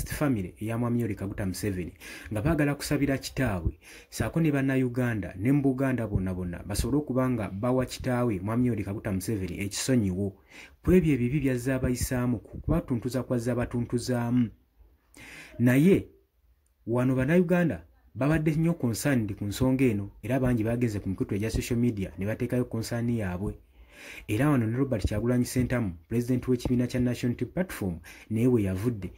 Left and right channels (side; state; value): both; identical; correlation 1.00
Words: Family eya Mwami Yoweri Kaguta Museveni nga baagala kusabira kitaawe saako ne bannayuganda ne mu Buganda bonna basobole okuba nga bawa kitaawe Mwami Yoweri Kaguta Museveni ekisonyiwo ku ebyo ebibi byazze abayisaamu kubatuntuza kwazze abatuntuzaamu. Naye wano bannayuganda babadde nnyo concerned ku nsonga eno era bangi bagenze ku mikutu egya social media ne bateekayo concern yaabwe. Era wano ne Robert Kyagulanyi Ssentamu, President w'ekibiina kya National Unity Platform, naye we yavudde